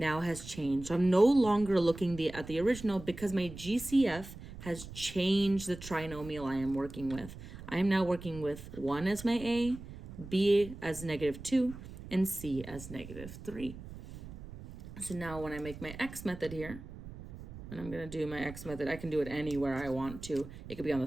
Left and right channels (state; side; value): noise; right; rumble, 13 dB below the sound